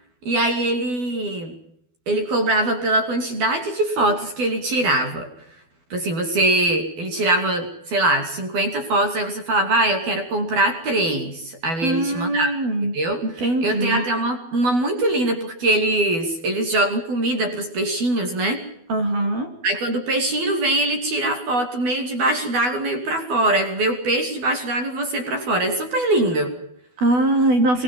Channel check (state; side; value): late; left; 12 ms